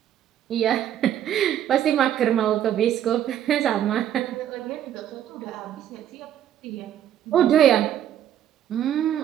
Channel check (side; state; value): left; quieter; 10.7 dB